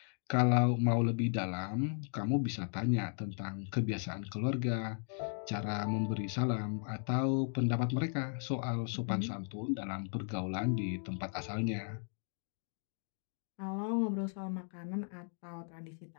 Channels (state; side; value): silent; right; 54 dB below the other